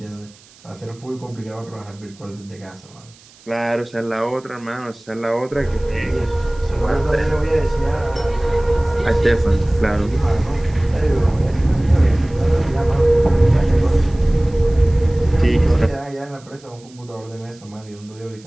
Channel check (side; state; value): right; noise; hiss, 26 dB below the sound